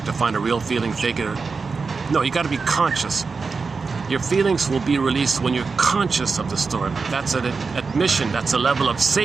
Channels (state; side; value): quieter; left; 4.7 dB